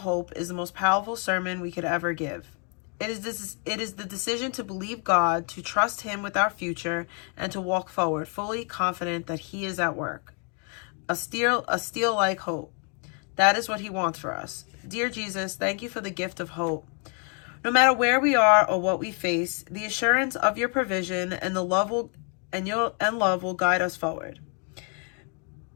is the most powerful sermon we could ever give. It is the decision to believe God, to trust Him with our future, and to walk forward, fully confident that He is at work. A steel-like hope. That is what He wants for us. Dear Jesus, thank you for the gift of hope. No matter where we are or what we face, the assurance of your provision and love will guide us forward.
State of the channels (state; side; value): quieter; right; 38.5 dB